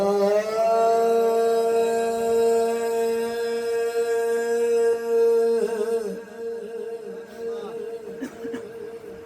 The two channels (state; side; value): identical; both; correlation 1.00